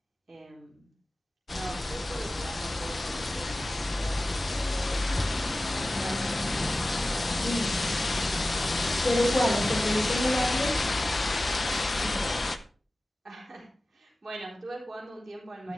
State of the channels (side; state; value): both; normal; correlation 0.96